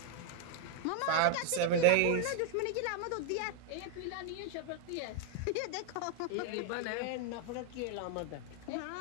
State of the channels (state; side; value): different; both; correlation 0.00